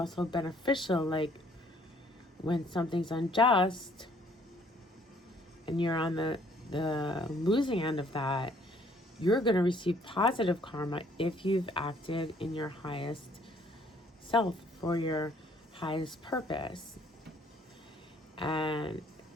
beneficial. Like when something's unjust and you're on the losing end of that, you're going to receive positive karma if you've acted in your highest self for your highest purpose. And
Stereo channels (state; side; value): normal; both; correlation 0.62